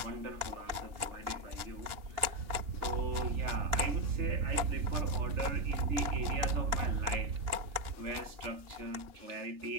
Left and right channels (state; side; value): late; left; 2.8 ms